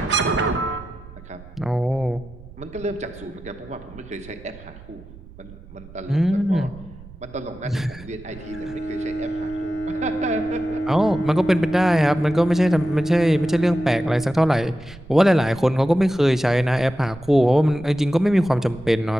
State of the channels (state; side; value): noise; right; rumble, 18 dB below the sound